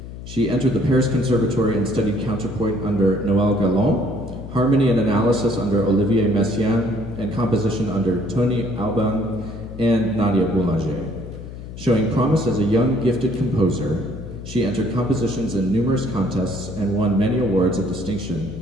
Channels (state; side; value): noise; left; hum, 12 dB below the sound